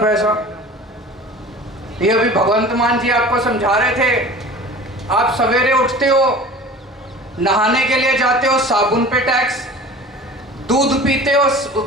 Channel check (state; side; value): normal; both; correlation 0.40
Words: ये अभी भगवंत मान जी आपको समझा रहे थे, आप सवेरे उठते हो, नहाने के लिए जाते हो, साबुन पे टैक्स, दूध पीते हो